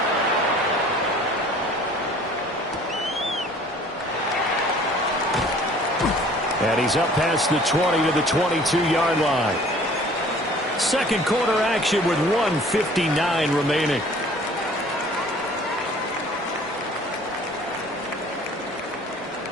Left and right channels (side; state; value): both; normal; correlation 0.51